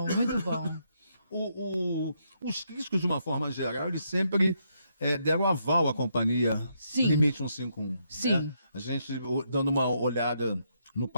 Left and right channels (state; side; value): inverted; both; correlation -0.77